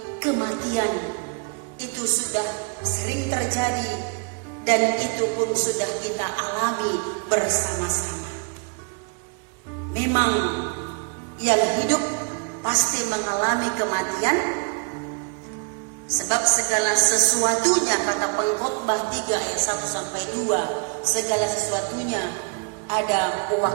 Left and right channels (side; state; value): left; quieter; 35.7 dB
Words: kematian itu sudah sering terjadi dan itu pun sudah kita alami bersama-sama. Memang yang hidup pasti mengalami kematian, sebab segala sesuatunya, kata Pengkhotbah 3 ayat 1-2, segala sesuatunya ada